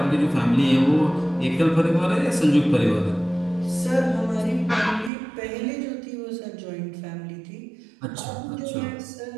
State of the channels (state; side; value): drops out; left; at 5.1 s